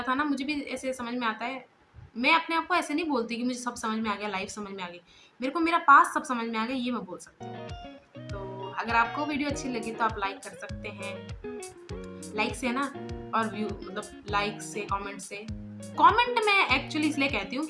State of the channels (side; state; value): both; identical; correlation 1.00